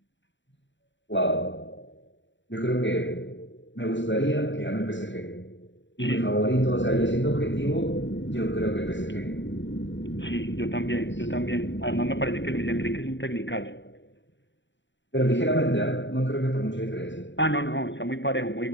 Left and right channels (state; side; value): late; right; 0.54 ms